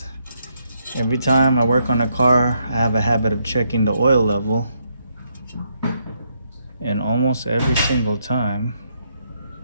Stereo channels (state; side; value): inverted; both; correlation -0.76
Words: every time I work on a car, I have a habit of checking the oil level. And almost every single time,